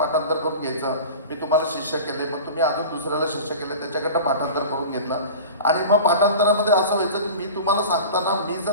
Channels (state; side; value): inverted; both; correlation -0.35